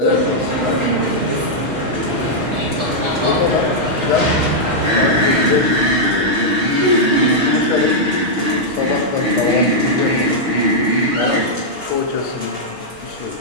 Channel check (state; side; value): late; left; 6.3 ms